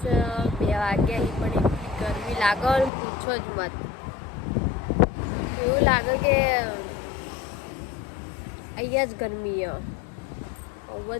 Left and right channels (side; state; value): right; drops out; at 2.9 s